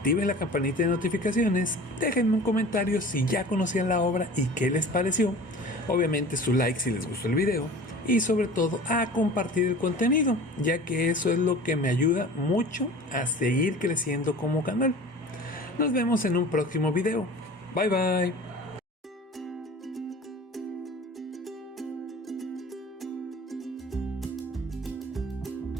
la campanita de notificaciones, déjenme un comentario si ya conocían la obra y qué les pareció, obviamente su like si les gustó el video y sobre todo a compartir el contenido, ya que eso es lo que me ayuda mucho a seguir creciendo como canal. Nos vemos en un próximo video. Bye bye.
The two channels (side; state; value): both; normal; correlation 0.40